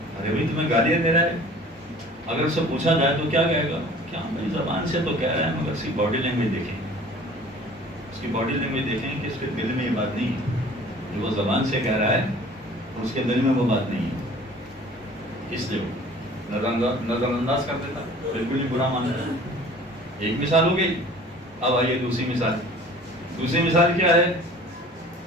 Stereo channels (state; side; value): normal; both; correlation 0.47